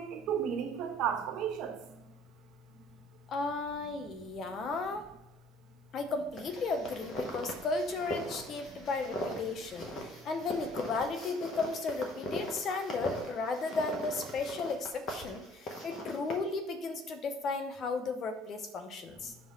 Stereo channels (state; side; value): normal; both; correlation 0.55